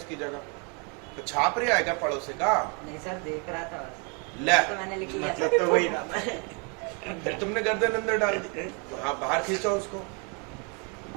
जगह। तो छाप रही है क्या पड़ोसी का? नहीं सर, देख रहा था बस। ले, तो मैंने लिख लिया। मतलब तो वही था। फिर तुमने गर्दन अंदर डाल दी। तो हाँ बाहर खींचो उसको,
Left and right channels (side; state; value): left; quieter; 35.1 dB